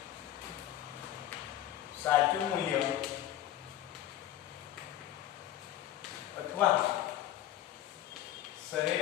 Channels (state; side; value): quieter; right; 12.7 dB